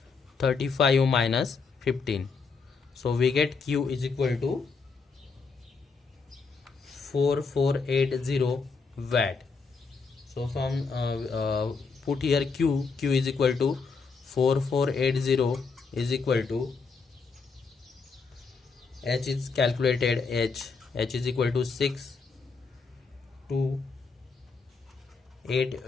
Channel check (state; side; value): quieter; right; 4.8 dB